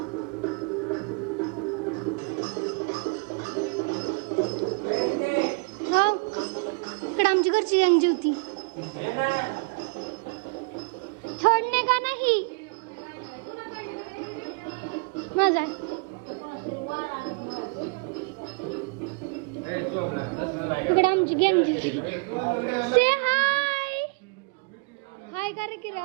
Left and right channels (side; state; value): left; quieter; 33.0 dB